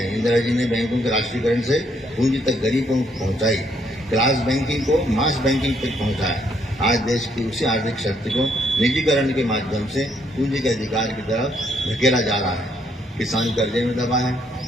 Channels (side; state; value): both; normal; correlation 0.71